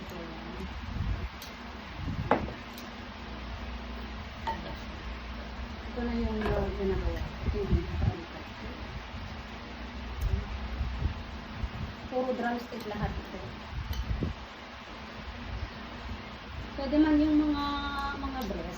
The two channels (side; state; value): both; identical; correlation 1.00